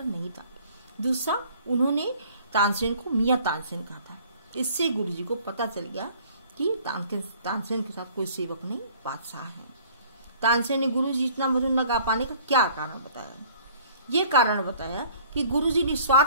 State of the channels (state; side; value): inverted; both; correlation -0.54